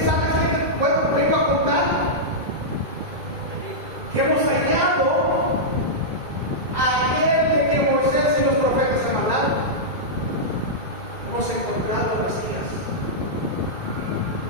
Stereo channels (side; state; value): left; late; 2.2 ms